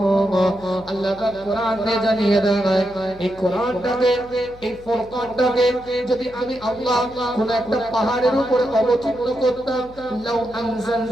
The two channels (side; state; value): left; noise; hum, 21 dB below the sound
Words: আল্লাহ পাক কোরআনে জানিয়ে দেয়, এই কোরআনটাকে, এই ফুরকানটাকে যদি আমি আল্লাহ কোন একটা পাহাড়ের উপরে অবতীর্ণ করতাম, লাউ